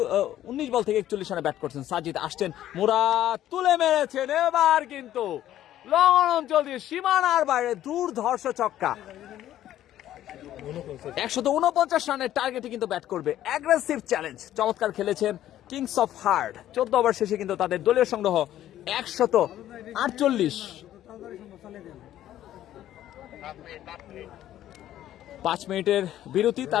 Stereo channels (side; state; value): right; quieter; 12.6 dB